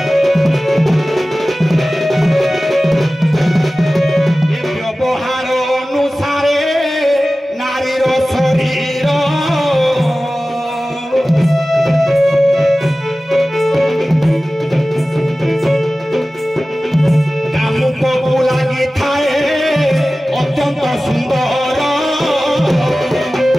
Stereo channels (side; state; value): both; normal; correlation 0.96